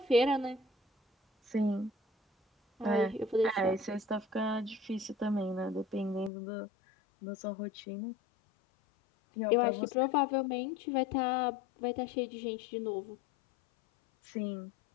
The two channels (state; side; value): drops out; right; at 6.3 s